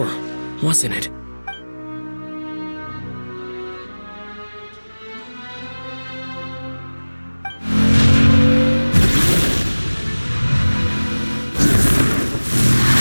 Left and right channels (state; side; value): inverted; both; correlation -1.00